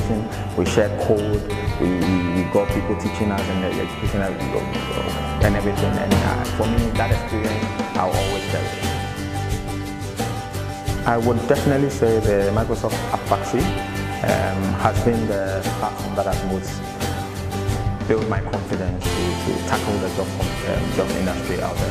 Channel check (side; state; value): both; identical; correlation 1.00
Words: we shared code, we got people teaching us and education and everything. And for me, that experience I'll always cherish. I would definitely say the Microsoft App Factory has been the platform that has most built my confidence to tackle the job industry out